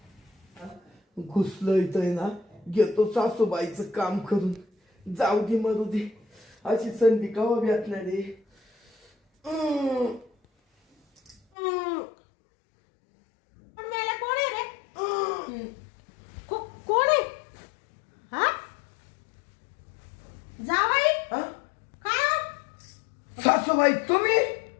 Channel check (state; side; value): drops out; right; at 11.4 s